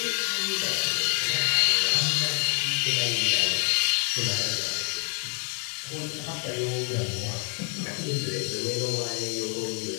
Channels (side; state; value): right; quieter; 38.5 dB